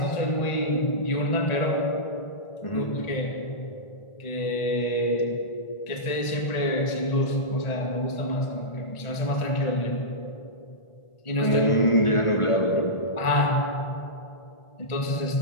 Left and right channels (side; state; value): right; late; 1.4 ms